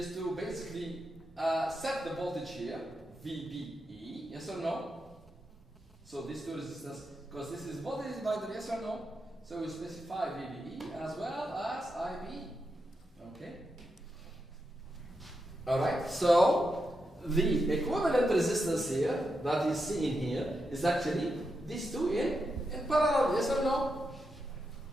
to basically set the voltage here, VBE. Yes or no? So these two resistors, because this is voltage divider. Yes or no? So we specify VBE as well as IB. Okay. All right. So the equivalent resistance here that is seen here is actually these two in parallel. Yes or no?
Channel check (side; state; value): both; normal; correlation 0.86